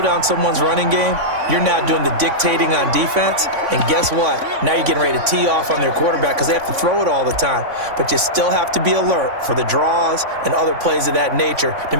down someone's running game, you're now doing the dictating on defense. And guess what? Now you're getting ready to tee off on their quarterback because they have to throw it all the time. But you still have to be alert for the draws and other plays of that nature to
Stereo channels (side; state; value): left; late; 3.5 ms